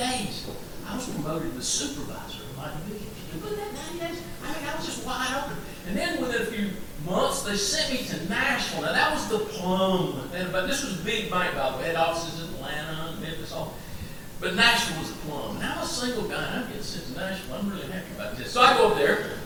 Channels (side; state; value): both; identical; correlation 1.00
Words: I was promoted to supervisor of my division. You put that 90 days? I mean, I was just wide they sent me to Nashville. Now, that was the plum. But this was a big bank, by the way. Had offices in Atlanta, Memphis, all. But Nashville was the plum. And I'm a single guy, and I'm getting sent to Nashville. I'm really happy about this. So I go up there,